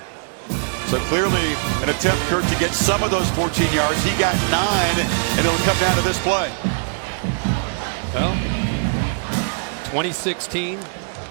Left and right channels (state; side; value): silent; left; 65 dB below the other